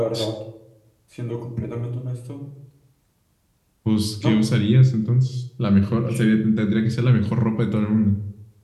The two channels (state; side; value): identical; both; correlation 1.00